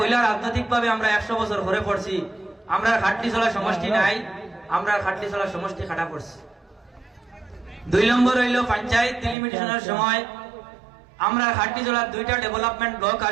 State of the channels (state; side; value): drops out; left; at 9.3 s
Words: রাজনৈতিক ভাবে আমরা 100 বছর ঘরে পড়ছি, আমরা খাটলিছড়া সমষ্টি নাই, আমরা খাটলিছড়া সমষ্টি খাটা পড়ছি। 2 নম্বর হইল পঞ্চায়েত ডিলিমিটেশনের সময় আমরা খাটলিছড়ার 2টা ডেভেলপমেন্ট ব্লক